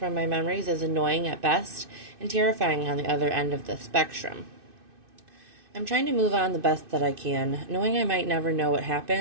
my memories is annoying at best and terrifying on the other end of the spectrum. I'm trying to move on the best that I can, knowing I might never know what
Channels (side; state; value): left; late; 2.6 ms